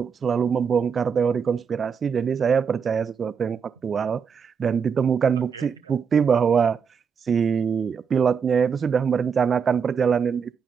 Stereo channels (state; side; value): quieter; left; 6.5 dB